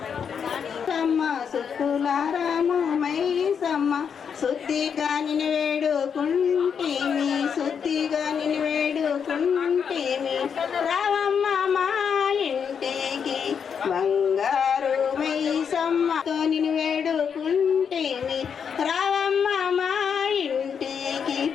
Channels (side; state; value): right; quieter; 7.0 dB